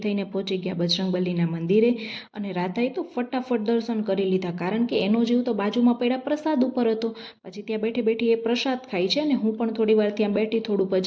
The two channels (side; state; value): both; identical; correlation 1.00